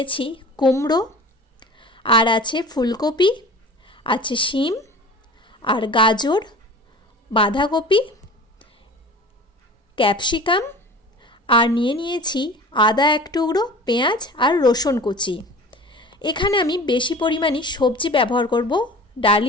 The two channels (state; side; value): normal; both; correlation 0.40